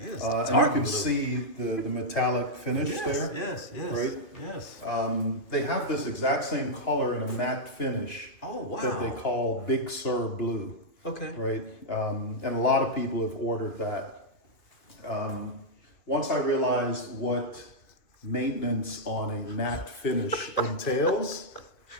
and you can see the metallic finish there. Yes. Right? Yes. They have this exact same color in a matte finish. Oh, wow. That they call Big Sur Blue. Okay. Right? And a lot of people have ordered that. Once I realized what maintenance on a matte finish entails,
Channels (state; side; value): late; right; 2.5 ms